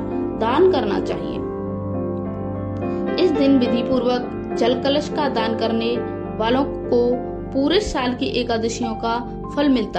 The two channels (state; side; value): identical; both; correlation 1.00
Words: दान करना चाहिए। इस दिन विधि पूर्वक जल कलश का दान करने वालों को पूरे साल की एकादशियों का फल